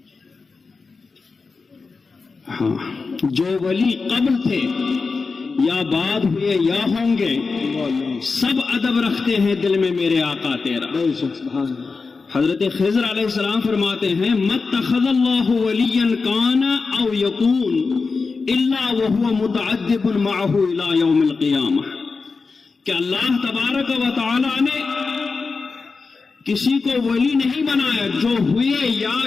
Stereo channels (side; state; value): right; quieter; 4.4 dB